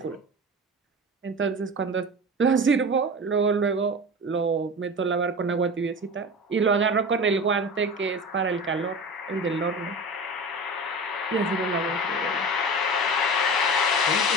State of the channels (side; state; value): both; normal; correlation 0.31